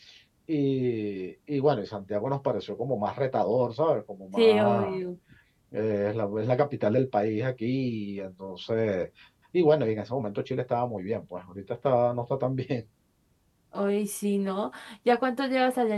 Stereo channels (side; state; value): both; identical; correlation 1.00